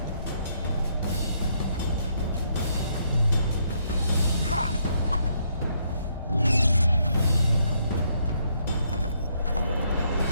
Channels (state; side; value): inverted; both; correlation -0.73